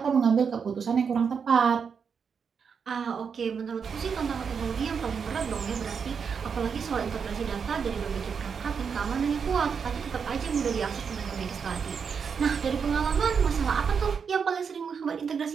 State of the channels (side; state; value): left; quieter; 6.3 dB